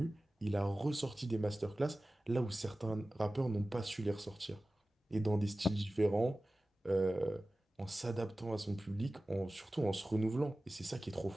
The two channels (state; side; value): normal; both; correlation 0.96